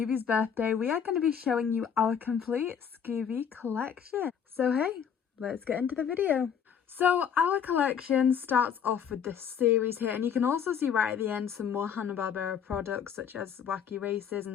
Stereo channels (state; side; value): quieter; right; 7.8 dB